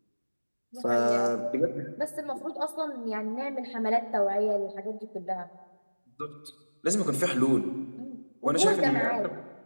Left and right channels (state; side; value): inverted; both; correlation -1.00